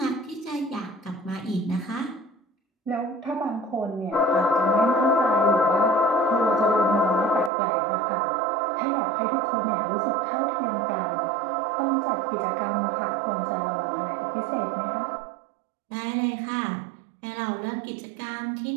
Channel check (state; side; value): drops out; left; at 7.5 s